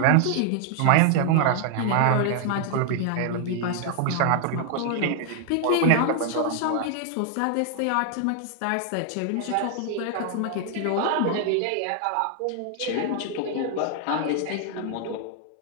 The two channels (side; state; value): both; different; correlation 0.00